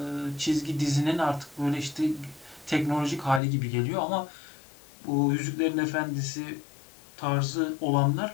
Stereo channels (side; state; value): right; drops out; at 3.4 s